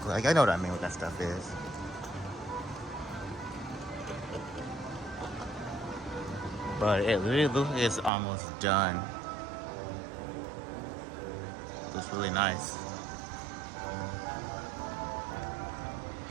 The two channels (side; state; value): left; drops out; at 8.1 s